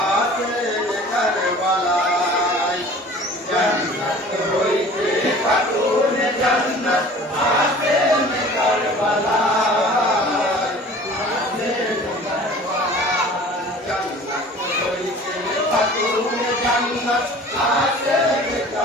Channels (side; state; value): both; normal; correlation 0.45